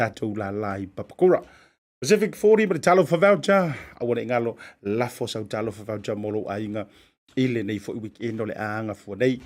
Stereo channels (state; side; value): identical; both; correlation 1.00